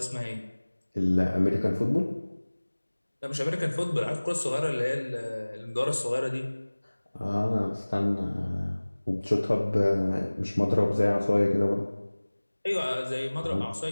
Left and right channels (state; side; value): inverted; both; correlation -1.00